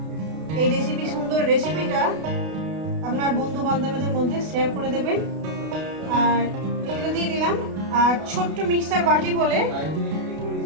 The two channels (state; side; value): late; left; 32 ms